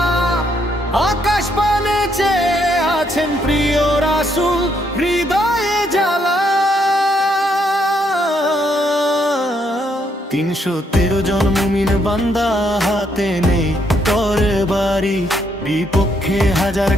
আকাশ পানে চেয়ে আছেন প্রিয় রাসূল, হৃদয়ে জ্বালা। ৩১৩ জন মুমিন বান্দা, হাতে নেই তরবারি, বিপক্ষে হাজার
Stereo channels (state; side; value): normal; both; correlation 0.74